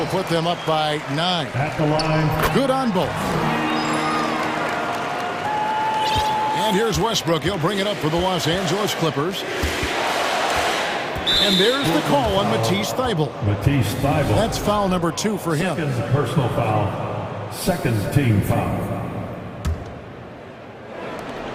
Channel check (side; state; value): both; identical; correlation 1.00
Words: put them up by 9. At the line. Good on both. And here's Westbrook. He'll bring it up for the Los Angeles Clippers. And there's the call on Matisse Thybulle. Matisse Thybulle. That's foul number 2 for him. Second personal foul. Second team foul.